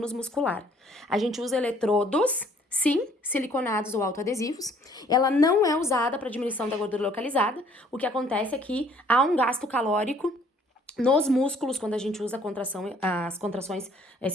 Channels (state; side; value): normal; both; correlation 0.60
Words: muscular. A gente usa eletrodos, sim, siliconados ou autoadesivos. Ela não é usada para diminuição da gordura localizada. O que acontece é que há um gasto calórico nos músculos, quando a gente usa as contrações